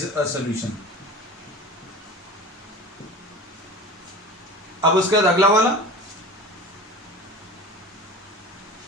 a solution. अब उसके बाद अगला वाला,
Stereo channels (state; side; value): normal; both; correlation 0.35